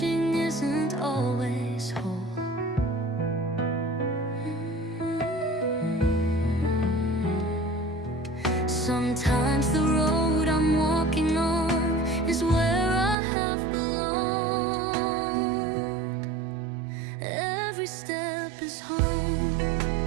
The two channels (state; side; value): drops out; left; at 13.2 s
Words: isn't always whole. Sometimes the road I'm walking on is where I have belonged. Every step is home,